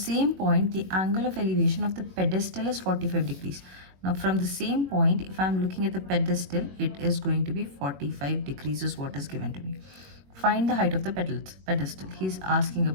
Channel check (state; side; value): late; left; 21 ms